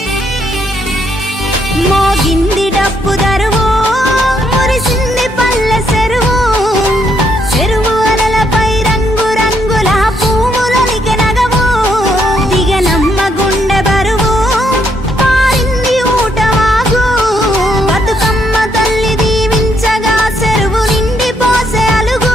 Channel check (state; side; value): normal; both; correlation 0.74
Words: మోగింది డప్పు దరువు మురిసింది పల్లె చెరువు చెరువు అలలపై రంగు రంగుల పువ్వులొలికె నగవు దిగనమ్మ గుండె బరువు పారింది ఊటవాగు బతుకమ్మ తల్లి దీవించగా చెరువు నిండి పోసే